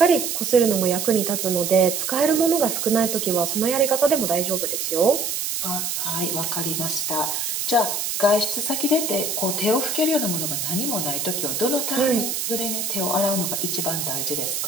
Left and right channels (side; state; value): right; noise; hiss, 2 dB below the sound